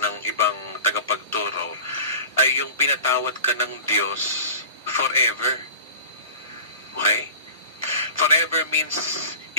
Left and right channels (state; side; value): inverted; both; correlation -0.38